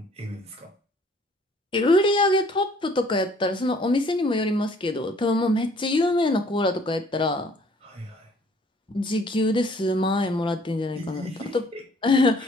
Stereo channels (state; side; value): normal; both; correlation 0.58